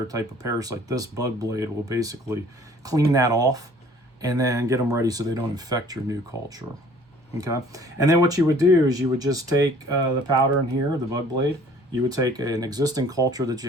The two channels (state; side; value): normal; both; correlation 0.53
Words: type of parasite, this bug blade will basically clean that off and then get them ready so they don't infect your new culture. Okay, and then what you would do is you would just take the powder in here, the bug blade. You would take an existing culture that